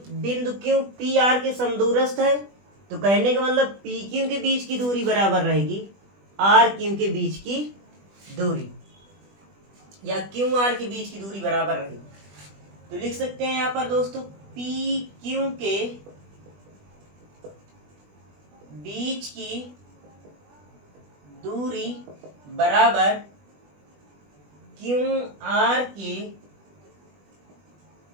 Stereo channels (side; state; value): left; late; 20 ms